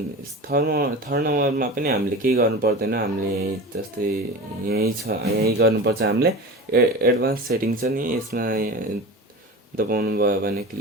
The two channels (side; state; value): both; normal; correlation 0.32